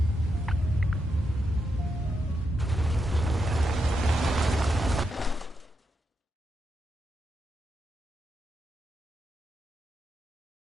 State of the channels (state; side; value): normal; both; correlation 0.84